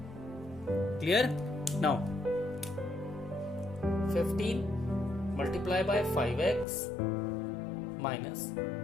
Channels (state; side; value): drops out; right; at 6.7 s